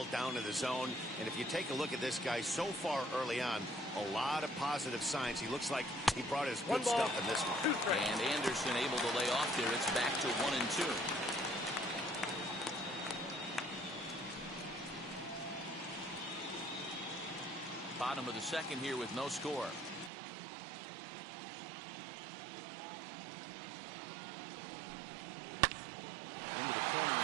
down in the zone. And if you take a look at this guy so far early on, a lot of positive signs. He looks like he brought his good stuff in this one. And Anderson able to lay off there. It's back to 1-2. Bottom of the second here with no score. Into the corner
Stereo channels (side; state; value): left; drops out; at 20.1 s